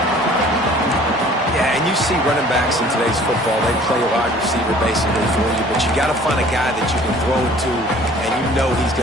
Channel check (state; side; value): normal; both; correlation 0.51